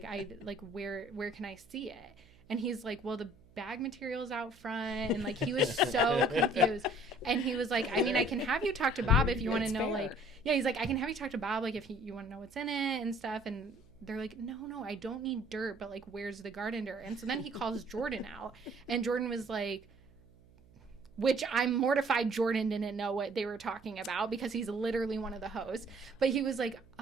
where can I see it?" And he's like, "Well, the bag material's out front." And like he was so confused. And he was like, "I mean, I can have you talk to Bob if you want to It's know fair. like," yeah, he's like, "I can have you talk to Bob like if you want to know what's in it and stuff." And they're like, no, I don't need dirt, but like, where's the garden dirt? And so then he calls Jordan out, and Jordan was like, which I'm mortified Jordan didn't know what they were talking about because he's literally one of the hosts. But he was like,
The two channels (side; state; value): right; noise; hum, 27 dB below the sound